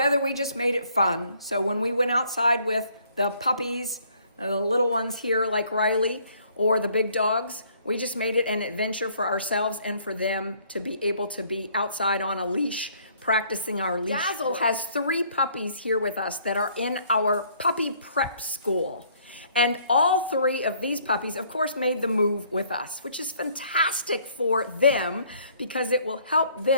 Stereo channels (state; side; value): inverted; both; correlation -0.63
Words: we just made it fun. So when we went outside with the puppies, the little ones here like Riley, or the big dogs, we just made it an adventure for ourselves and for them to be able to be outside on a leash, practicing our leash. Dazzle has 3 puppies here with us that are in our puppy prep school. And all 3 of these puppies, of course, made the move with us, which is fantastic for them because it will help